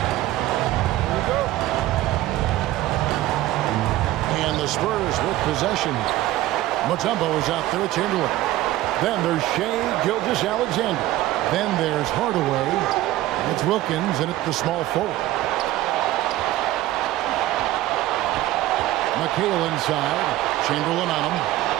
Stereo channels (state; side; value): quieter; left; 15.5 dB